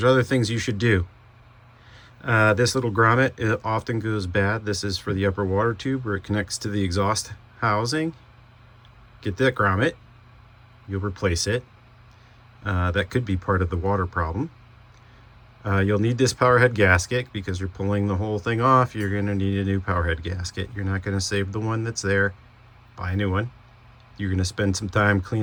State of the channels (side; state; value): both; identical; correlation 1.00